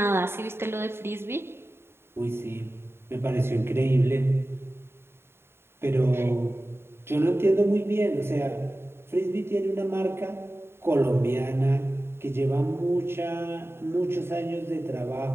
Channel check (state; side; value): late; left; 0.11 ms